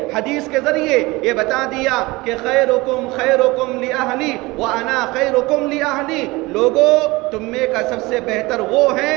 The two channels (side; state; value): left; quieter; 22.2 dB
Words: حدیث کے ذریعے یہ بتا دیا کہ خیرکم خیرکم لأہلی وانا خیرکم لأہلی، لوگوں تم میں کا سب سے بہتر وہ